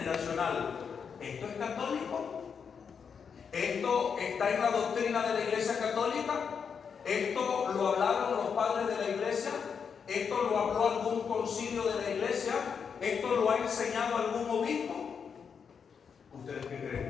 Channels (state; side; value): quieter; right; 6.5 dB